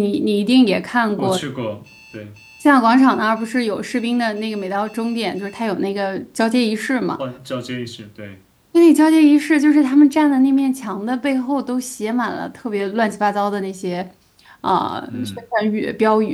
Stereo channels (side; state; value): both; identical; correlation 1.00